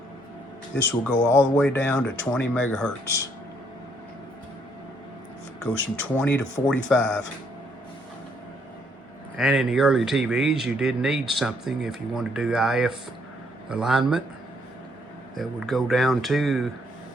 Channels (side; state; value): both; normal; correlation 0.69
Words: This will go all the way down to 20 megahertz. It goes from 20 to 45. And in the early TVs, you did need something if you want to do IF alignment that would go down to